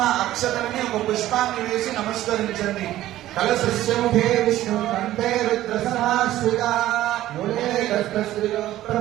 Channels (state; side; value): quieter; left; 14.3 dB